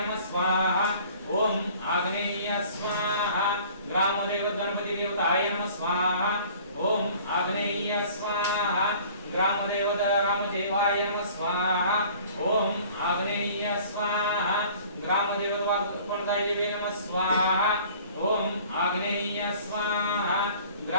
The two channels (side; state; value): both; inverted; correlation -0.50